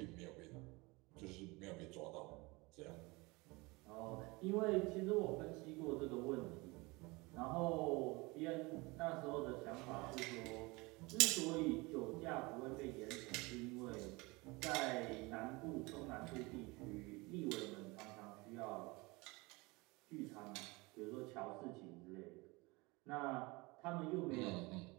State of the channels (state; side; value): quieter; left; 24.6 dB